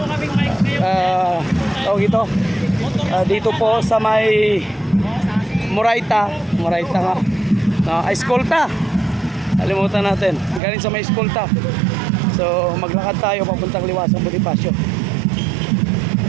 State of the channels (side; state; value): left; drops out; at 10.6 s